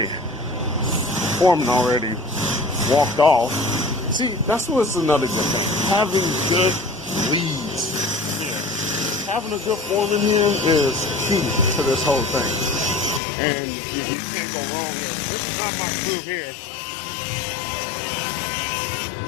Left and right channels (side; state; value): right; drops out; at 13.2 s